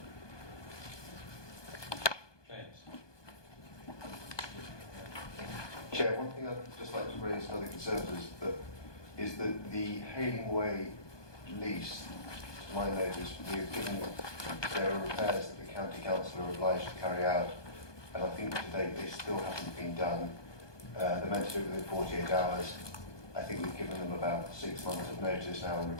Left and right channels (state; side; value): late; right; 1.2 ms